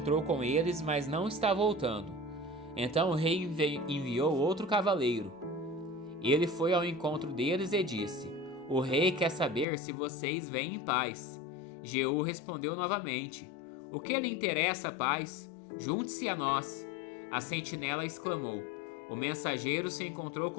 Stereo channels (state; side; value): drops out; right; at 9.7 s